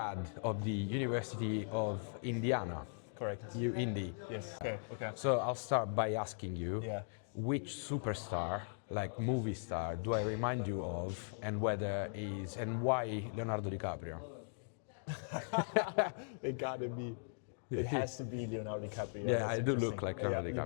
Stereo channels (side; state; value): right; silent; digital silence